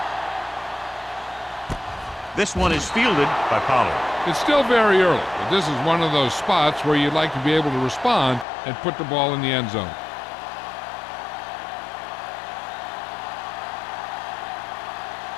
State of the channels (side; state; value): right; drops out; at 8.5 s